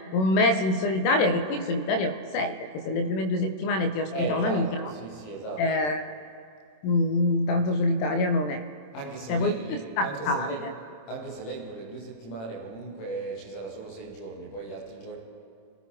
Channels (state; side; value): late; right; 27 ms